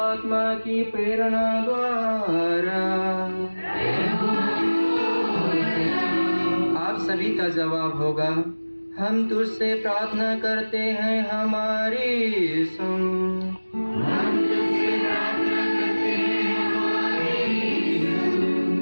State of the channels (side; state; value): both; inverted; correlation -1.00